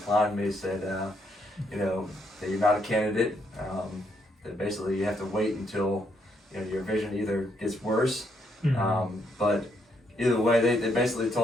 me. Said, that you're not a candidate. That basically you have to wait until your vision either gets worse. But either way, they basically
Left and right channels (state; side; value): normal; both; correlation 0.75